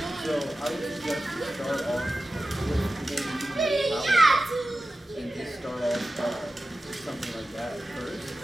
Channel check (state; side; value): normal; both; correlation 0.94